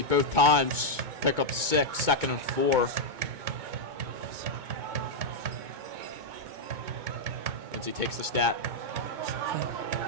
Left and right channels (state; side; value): late; left; 2.2 ms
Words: both times. Pick up 6, 2nd and 4. Lindsey takes the snap.